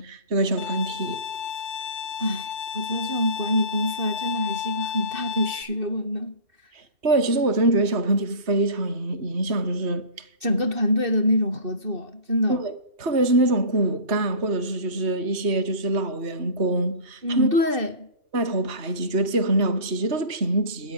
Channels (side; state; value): left; late; 3.1 ms